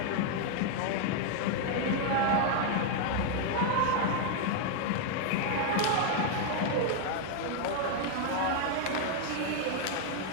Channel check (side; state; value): both; different; correlation 0.00